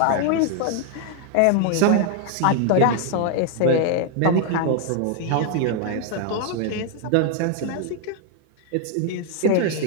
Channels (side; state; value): both; different; correlation 0.00